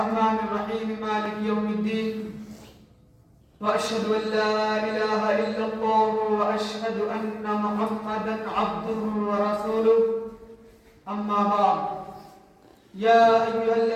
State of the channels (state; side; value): identical; both; correlation 1.00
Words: الرحيم مالك يوم الدين وأشهد أن لا إله إلا الله وأشهد أن محمدا عبده ورسوله أما بعد يا أيها